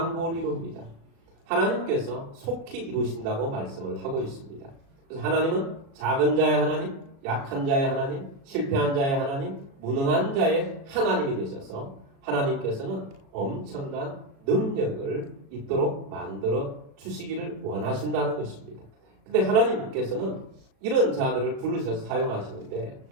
이룹니다. 하나님께서 속히 이루신다고 말씀을 하고 있습니다. 그래서 하나님은 작은 자의 하나님, 약한 자의 하나님, 실패한 자의 하나님, 무능한 자의 하나님이 되셔서 하나님께서는 엄청난 능력을 있도록 만들어 주시기를 원하신다는 것입니다. 근데 하나님께서는 이런 자들을 부르셔서 사용하시는데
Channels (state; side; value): late; left; 36 ms